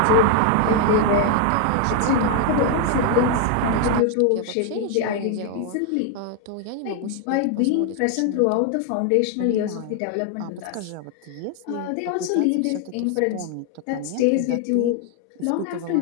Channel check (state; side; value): different; both; correlation 0.00